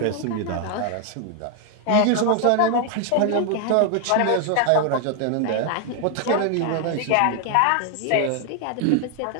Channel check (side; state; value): both; different; correlation 0.00